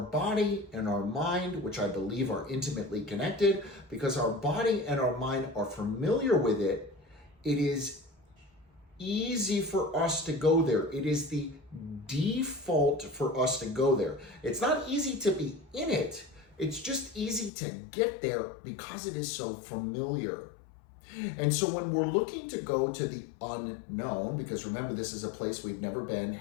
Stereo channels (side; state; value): right; drops out; at 17.5 s